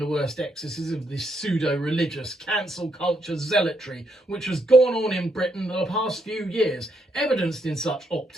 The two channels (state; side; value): normal; both; correlation 0.77